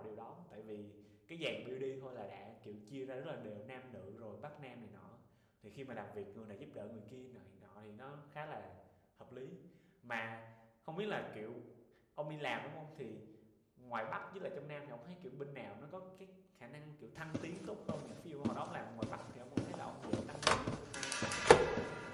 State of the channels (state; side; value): identical; both; correlation 1.00